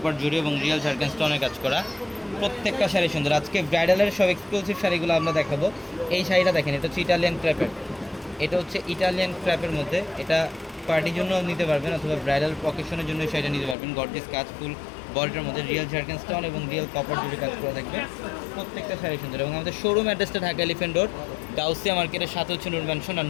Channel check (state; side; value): drops out; right; at 13.8 s